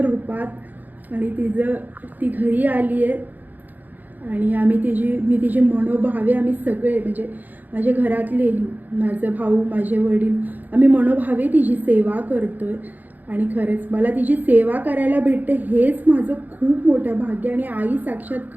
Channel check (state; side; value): late; left; 0.084 ms